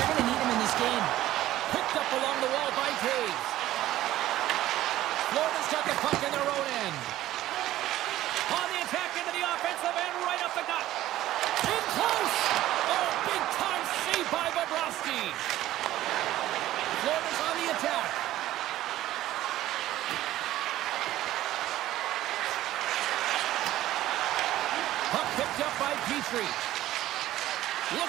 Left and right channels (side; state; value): left; quieter; 14.5 dB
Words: going to need him in this game. Picked up along the wall by Taves. Florida's got the puck in their own end. On the attack into the offensive end, right up the gut. In close! Oh, big time save by Bobrovsky. Florida's on the attack. Puck picked up by Petrie.